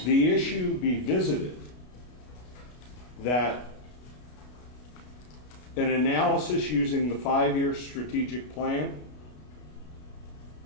issue be visited, that an analysis using the 5-year strategic plan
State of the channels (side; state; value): right; late; 33 ms